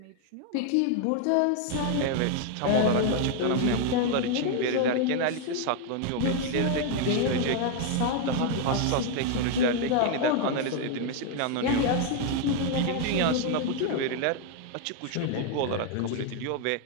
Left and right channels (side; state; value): both; different; correlation 0.00